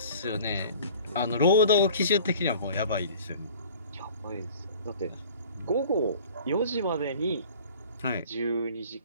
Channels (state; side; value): inverted; both; correlation -0.47